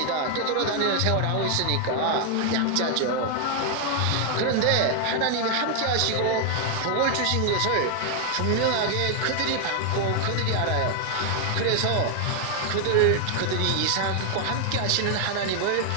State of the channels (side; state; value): both; different; correlation 0.00